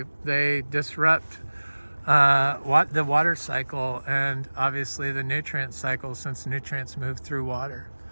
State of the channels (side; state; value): both; inverted; correlation -1.00